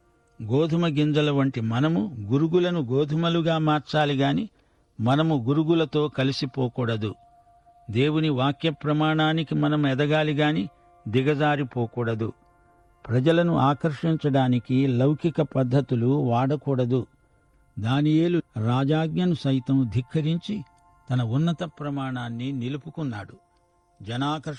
గోధుమ గింజల వంటి మనము గురుగులను గోధుమలుగా మార్చాలి గాని మనము గురుగులతో కలిసిపోకూడదు. దేవుని వాక్య ప్రమాణానికి మనం ఎదగాలి గాని దిగజారిపోకూడదు. ప్రజలను ఆకర్షించడానికి లౌకిక పద్ధతులు వాడకూడదు. దానియేలు రాజాజ్ఞను సైతం ధిక్కరించి తన ఉన్నత ప్రమాణాన్ని నిలుపుకున్నాడు.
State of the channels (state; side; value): identical; both; correlation 1.00